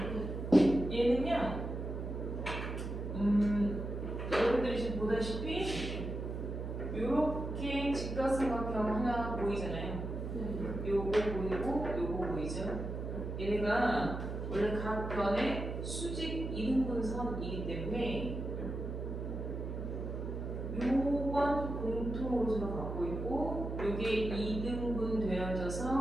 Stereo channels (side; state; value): right; noise; hum, 5 dB below the sound